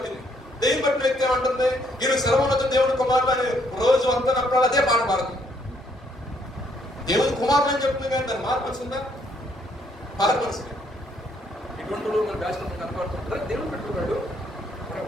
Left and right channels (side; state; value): both; normal; correlation 0.69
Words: దయ్యం పట్టిన వ్యక్తి ఏమంటుంది, ఈయన సర్వోన్నత దేవుని కుమారులు అని రోజు అంతా నప్పుడు అదే పాట పాడుతుంది. దేవుని కుమారులు అని చెప్తుంది కానీ దాన్ని మార్పల్సిందా? మార్పల్సింది. ఇటువంటి మన బ్యాచ్ కనపడుతుంటారా? దేవుని పెట్టుకున్నాడు,